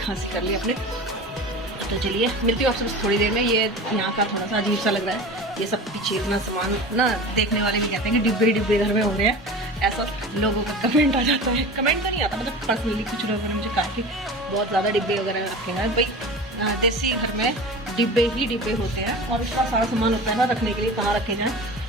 कर ली अपने। तो चलिए मिलती हूँ आपसे बस थोड़ी देर में। ये यहाँ का थोड़ा सा अजीब सा लग रहा है, ये सब पीछे इतना सामान ना, देखने वाले भी कहते हैं कि डिब्बे डिब्बे घर में हो रहे हैं। ऐसा लोगों का कमेंट आ जाता है। कमेंट तो नहीं आता, मतलब पर्सनली कुछ लोगों ने मुझे कहा कि बहुत ज़्यादा डिब्बे वगैरह आपके हैं। भाई देसी घर में डिब्बे ही डिब्बे होते हैं, और इसका सारा सामान होता है ना रखने के लिए, कहाँ रखे जाएँ।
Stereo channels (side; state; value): both; normal; correlation 0.34